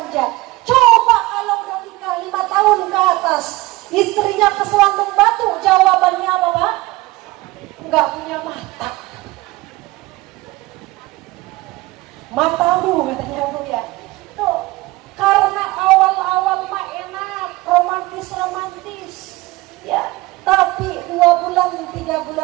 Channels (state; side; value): quieter; left; 20.3 dB